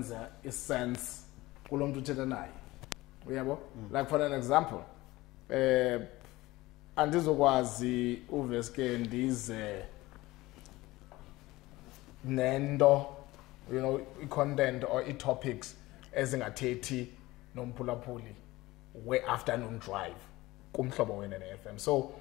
isense kulo muntu othetha naye. Uyabo? Like for an example, andizokwazi uveske ndize nendo, you know, content or topics ezingathethi nomphulaphuli we afternoon drive kumhlobo wenene FM. So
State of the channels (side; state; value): right; quieter; 19.1 dB